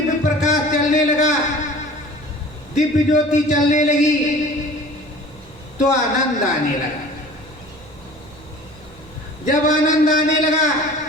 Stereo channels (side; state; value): right; noise; rumble, 23 dB below the sound